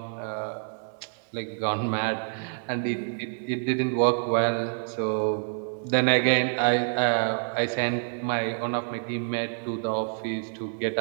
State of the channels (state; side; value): silent; left; digital silence